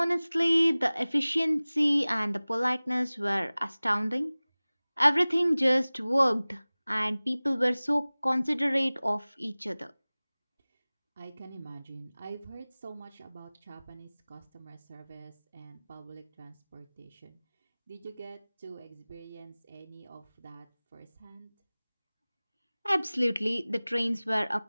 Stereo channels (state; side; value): inverted; both; correlation -0.99